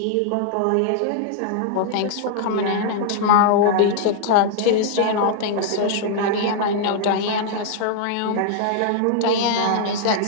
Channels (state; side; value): different; both; correlation -0.01